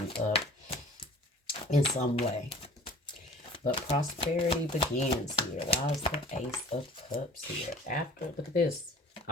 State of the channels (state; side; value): normal; both; correlation 0.46